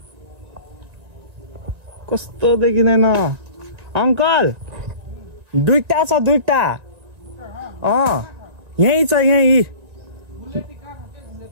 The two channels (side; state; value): left; late; 1.9 ms